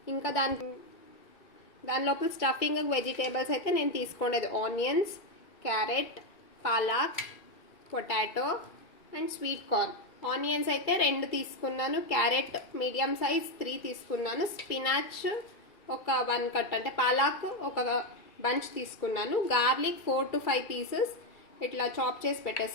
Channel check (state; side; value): late; right; 2.3 ms